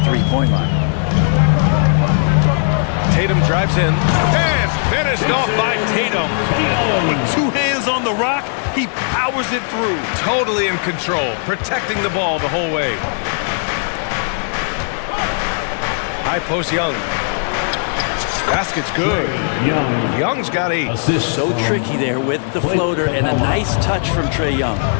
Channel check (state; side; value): silent; right; 68 dB below the other